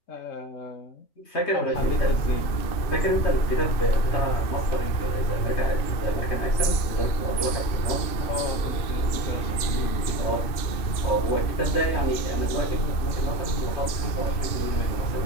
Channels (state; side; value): late; right; 2.6 ms